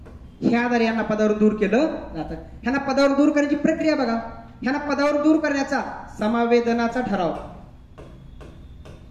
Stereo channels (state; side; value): identical; both; correlation 1.00